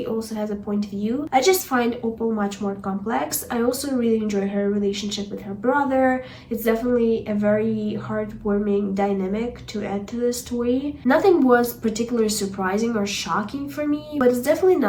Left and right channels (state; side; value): identical; both; correlation 1.00